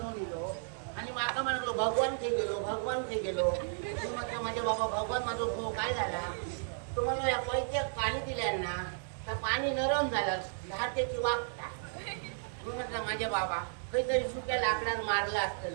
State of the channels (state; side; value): silent; left; 55 dB below the other